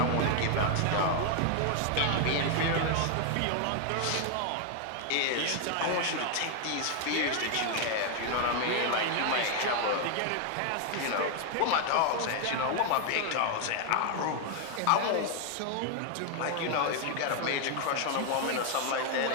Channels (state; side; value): different; both; correlation 0.00